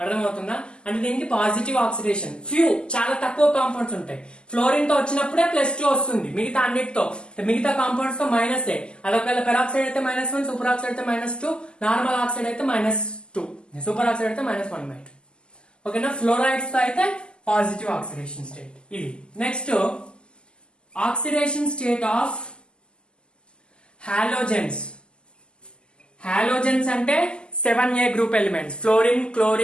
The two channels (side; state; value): right; late; 0.049 ms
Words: అర్థమవుతుందా? అంటే దీనికి పాజిటివ్ ఆక్సిడేషన్, ఫ్యూ చాలా తక్కువ కాంపౌండ్స్ ఉంటాయి. ఫ్లోరిన్ తో వచ్చినప్పుడే +2 వస్తుంది, మిగతా అన్నిటితో మిగతా కాంపౌండ్స్ తో -8. అదొకవేళ పెరాక్సైడ్ అయితే -1, సూపర్ ఆక్సైడ్ అయితే -2, నార్మల్ ఆక్సైడ్ అయితే -2, సూపర్ ఆక్సైడ్ అయితే -1/2. ఓకేనా? ఫ్లోరైడ్స్ తో అయితే పాజిటివ్ ఆక్సిడేషన్ స్టేట్ ఇది. Next oxidation state of halogens. Halogens అంటే 7A group elements, fluorine,